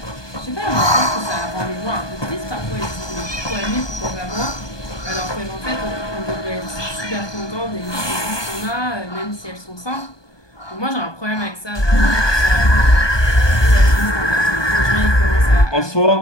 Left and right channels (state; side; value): late; right; 1.2 ms